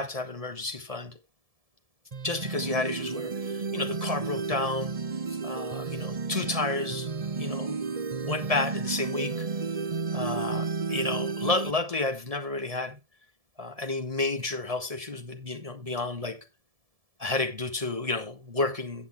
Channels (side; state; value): left; late; 1.7 ms